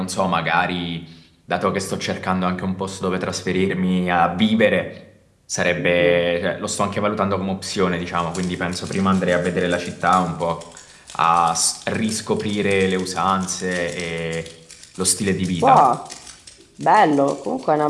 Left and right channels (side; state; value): both; identical; correlation 1.00